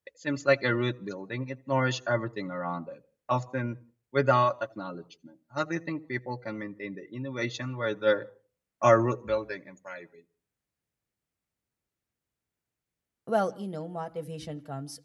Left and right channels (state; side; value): identical; both; correlation 1.00